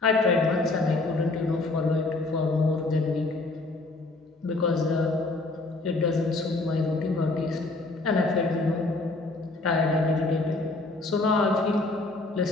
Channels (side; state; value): right; quieter; 3.2 dB